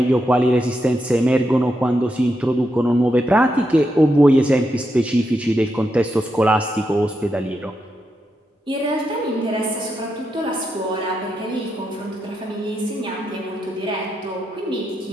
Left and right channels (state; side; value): normal; both; correlation 0.84